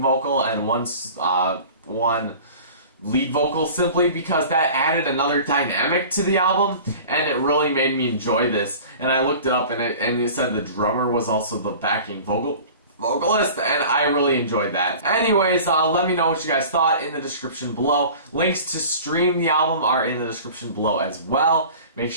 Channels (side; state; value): both; inverted; correlation -0.41